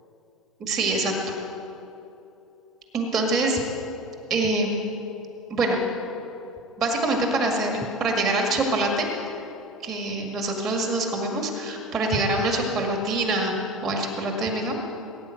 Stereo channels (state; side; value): normal; both; correlation 0.34